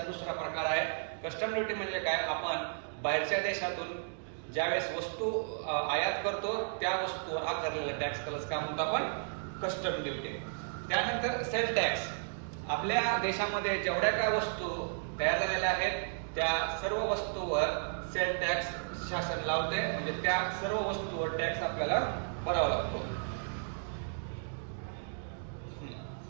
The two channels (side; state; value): left; silent; digital silence